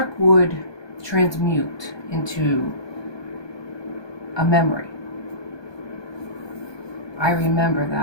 would transmute into a memory. I remember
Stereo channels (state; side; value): late; right; 1.2 ms